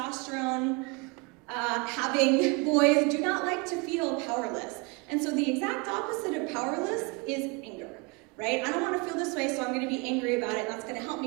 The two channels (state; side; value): quieter; left; 29.1 dB